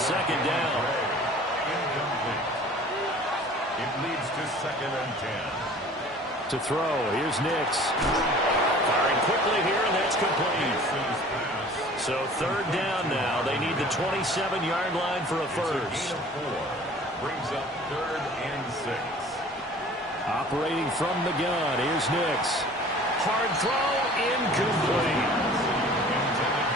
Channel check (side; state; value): both; normal; correlation 0.47